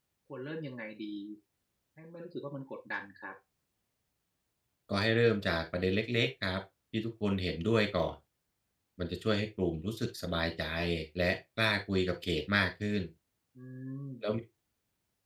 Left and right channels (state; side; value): identical; both; correlation 1.00